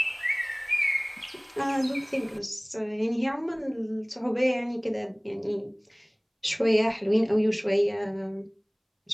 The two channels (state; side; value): identical; both; correlation 1.00